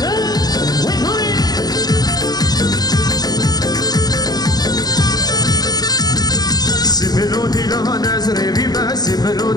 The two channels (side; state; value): right; late; 0.19 ms